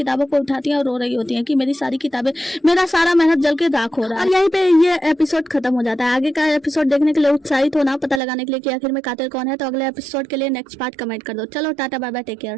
को उठाती है और रो रही होती है कि मेरी सारी किताबें, मेरा सारा मेहनत जल के राख हो रहा है। और यहीं पे ये एपिसोड खत्म हो जाता है। आगे का एपिसोड देखने के लिए उत्साहित होना, पता लगाने के लिए कि आखिर में कातिल कौन है। तो अगले एपिसोड के लिए नेक्स्ट पार्ट कमेंट कर दो। चलो ta-ta bye bye, take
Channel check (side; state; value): left; drops out; at 8.2 s